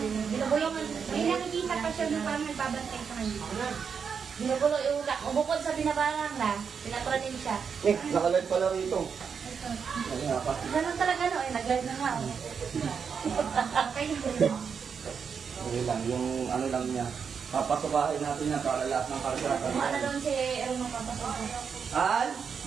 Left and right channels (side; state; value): left; quieter; 6.4 dB